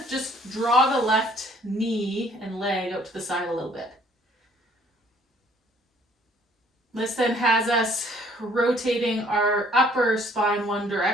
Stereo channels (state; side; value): normal; both; correlation 0.59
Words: just draw the left knee and leg out to the side a little bit. This then has us rotating our upper spine one